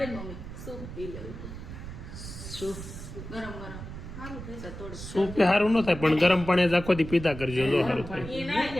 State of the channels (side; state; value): right; noise; rumble, 10 dB below the sound